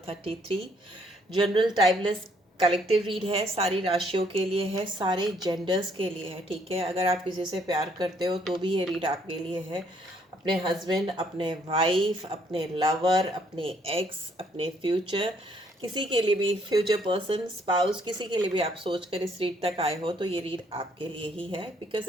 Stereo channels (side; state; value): both; normal; correlation 0.67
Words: 33। General timeless collective read है, सारी राशियों के लिए है, सारे जेंडर्स के लिए है। ठीक है, अगर आप किसी से प्यार करते हो तो भी ये रीड आपके लिए है। अपने हस्बैंड, अपने वाइफ, अपने लवर, अपने एक्स, अपने फ्यूचर, किसी के लिए भी, फ्यूचर पर्सन, स्पाउस, किसी के लिए भी आप सोच कर इस रीड तक आए हो तो ये रीड आपके लिए ही है, because